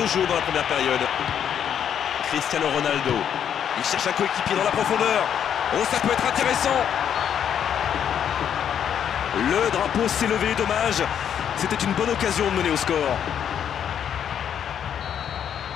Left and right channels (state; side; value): quieter; right; 8.8 dB